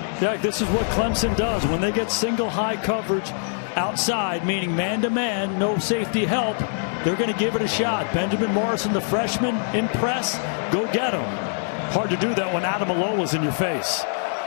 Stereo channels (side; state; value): right; silent; digital silence